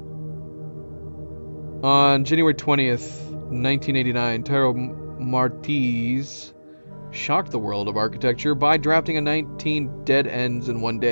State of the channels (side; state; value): both; inverted; correlation -1.00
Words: On January 20th, 1989, Taro Martiz shocked the world of architecture by drafting a 19 dead ends in one